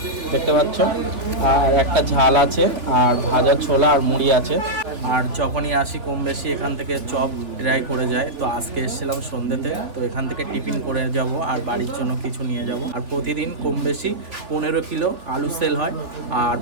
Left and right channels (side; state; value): left; late; 3.3 ms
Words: দেখতে পাচ্ছ, আর একটা ঝাল আছে, আর ভাজা ছোলা আর মুড়ি আছে। আর যখনই আসি কম বেশি এখান থেকে চপ ট্রাই করে যায়। তো আজকে এসেছিলাম সন্ধ্যেতে, তো এখান থেকে টিফিন করে যাব আর বাড়ির জন্য কিছু নিয়ে যাব। আর প্রতিদিন কম বেশি 15 কিলো আলু সেল হয়, আর